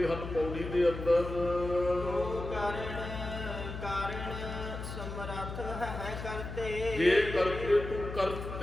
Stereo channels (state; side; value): noise; left; hum, 7 dB below the sound